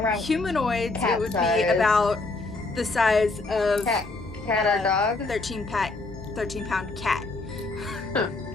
humanoids it would size. be about the size of Cat or dog? 13 pound cat. Huh.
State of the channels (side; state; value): right; quieter; 3.4 dB